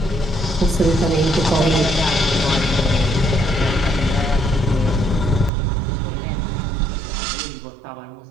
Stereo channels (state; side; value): drops out; left; at 5.5 s